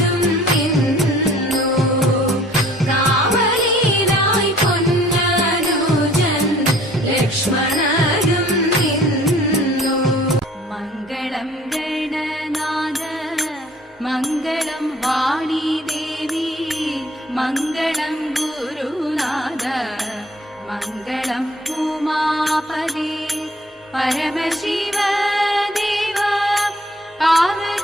നിന്നു കാവലിനായി പൊന്നനുജൻ ലക്ഷ്മണനും നിന്നു മംഗളം ഗണനാഥ മംഗളം വാണി ദേവി മംഗളം ഗുരുനാഥ മംഗളം ഉമാപദേ പരമശിവ ദേവ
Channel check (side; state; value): both; normal; correlation 0.55